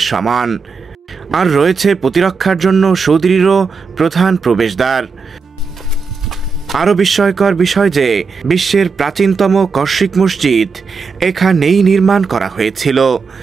সমান, আর রয়েছে প্রতিরক্ষার জন্য সুদৃঢ় প্রধান প্রবেশদ্বার। আরও বিস্ময়কর বিষয় যে বিশ্বের প্রাচীনতম কর্ষিক মসজিদ এখানেই নির্মাণ করা হয়েছিল,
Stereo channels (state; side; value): quieter; left; 5.0 dB